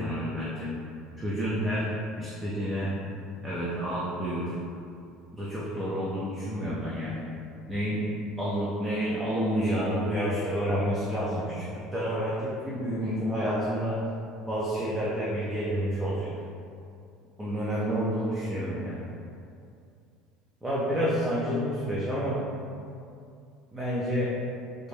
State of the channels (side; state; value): both; normal; correlation 0.54